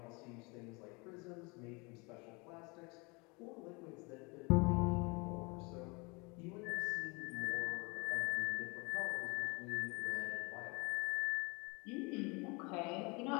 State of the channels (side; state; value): right; quieter; 28.8 dB